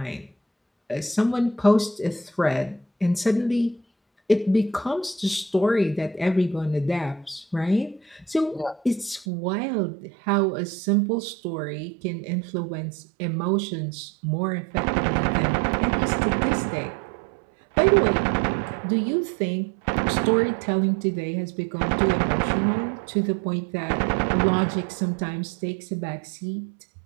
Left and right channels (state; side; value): drops out; left; at 9.2 s